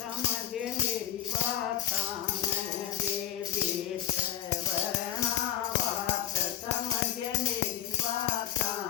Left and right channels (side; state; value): right; quieter; 10.6 dB